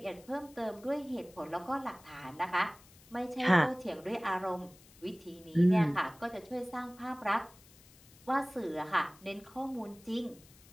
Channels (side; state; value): left; noise; hiss, 24 dB below the sound